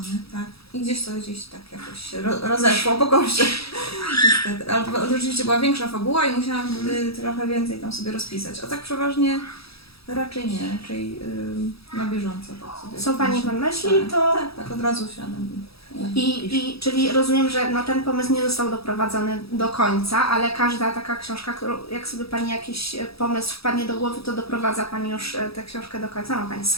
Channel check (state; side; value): late; right; 0.77 ms